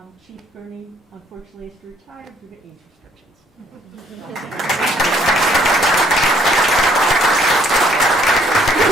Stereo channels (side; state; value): both; normal; correlation 0.65